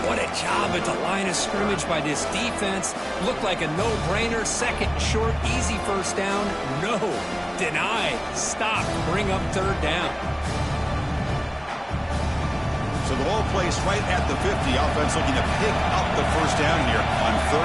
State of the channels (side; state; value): both; identical; correlation 1.00